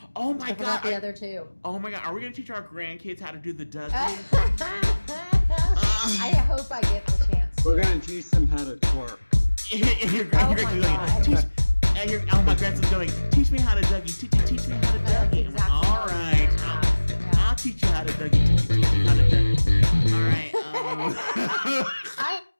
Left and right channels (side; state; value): both; inverted; correlation -1.00